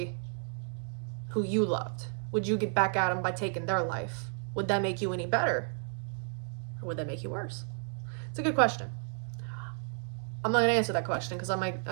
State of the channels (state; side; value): silent; left; 56 dB below the other